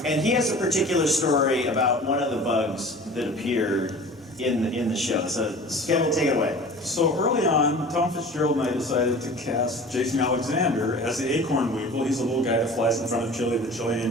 And he has a particular story about one of the bugs that appeared in the show. So Kevin, take it away. So early on, Tom Fitzgerald and I decided to cast Jason Alexander as the acorn weevil. He's a little guy that flies in front of Chili, the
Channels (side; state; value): both; normal; correlation 0.41